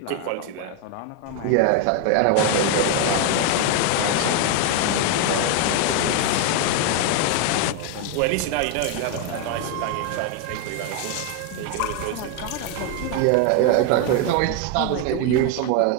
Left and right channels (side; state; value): both; different; correlation 0.01